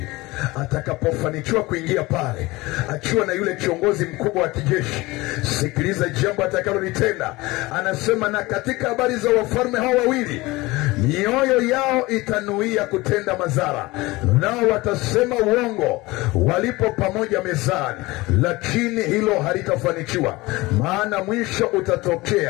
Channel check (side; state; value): right; quieter; 21.2 dB